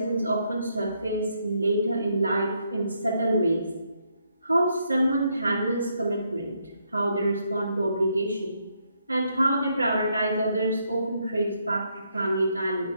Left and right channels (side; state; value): both; inverted; correlation -0.76